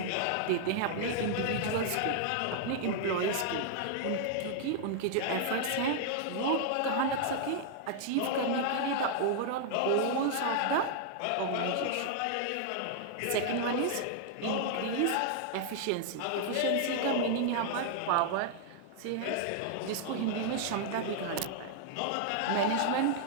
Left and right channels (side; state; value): both; different; correlation -0.01